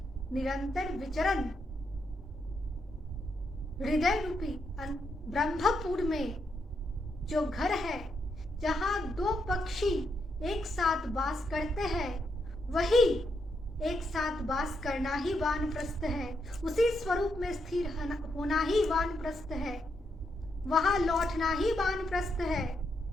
निरंतर विचरण, हृदय रूपी ब्रह्मपुर में जो घर है, जहां दो पक्षी एक साथ वास करते हैं, वही एक साथ वास करना ही वानप्रस्थ है। उसी स्वरूप में स्थिर होना ही वानप्रस्थ है, वहां लौटना ही वानप्रस्थ है।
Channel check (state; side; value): normal; both; correlation 0.80